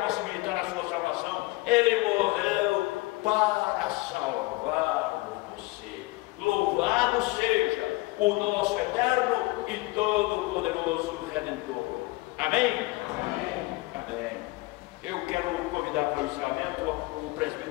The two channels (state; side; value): quieter; right; 22.3 dB